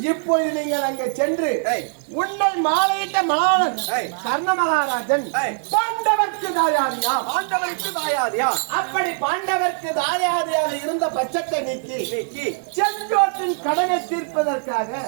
இப்பொழுது நீங்கள் அங்கே சென்று உன்னை மாலையிட்ட மலாளன் கர்ண மகாராஜன் பாண்டவர்க்கு தாயாதியா அப்படி பாண்டவர்க்கு தாயாதியாக இருந்த பட்சத்தை நீக்கி செங்கோட்டின் கடனை தீர்ப்பதற்காக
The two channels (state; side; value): silent; left; 57 dB below the other